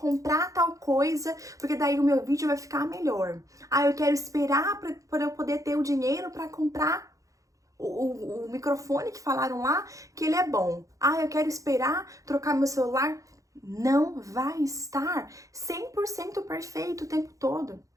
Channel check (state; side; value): late; left; 0.16 ms